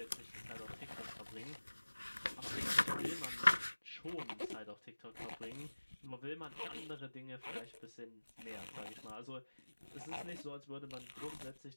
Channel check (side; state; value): both; inverted; correlation -1.00